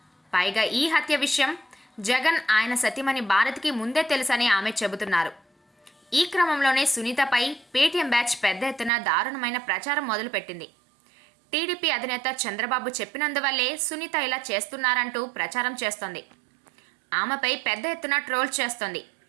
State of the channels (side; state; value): left; drops out; at 8.9 s